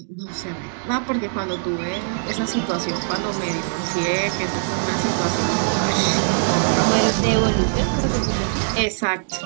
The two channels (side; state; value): left; silent; digital silence